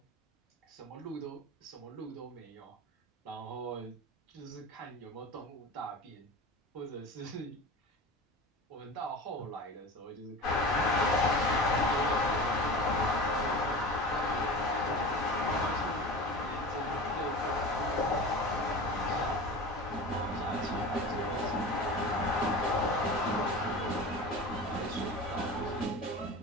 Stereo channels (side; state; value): both; normal; correlation 0.33